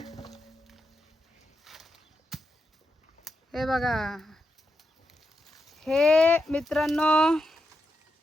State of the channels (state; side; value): normal; both; correlation 0.86